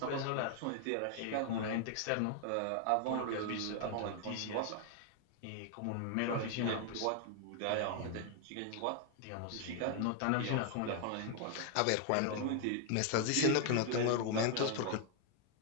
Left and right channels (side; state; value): both; different; correlation 0.00